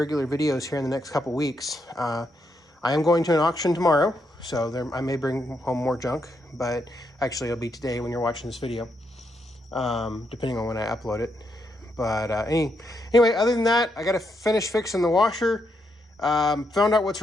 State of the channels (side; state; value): both; normal; correlation 0.80